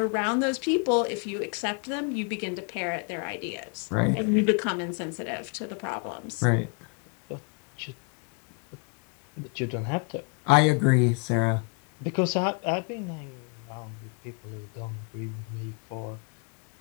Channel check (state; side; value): quieter; right; 35.9 dB